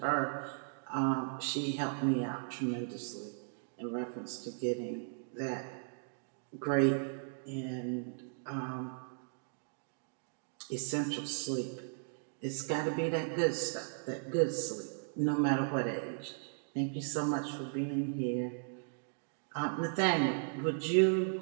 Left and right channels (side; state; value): left; silent; digital silence